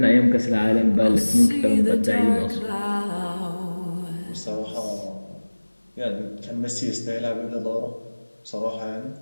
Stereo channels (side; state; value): both; inverted; correlation -1.00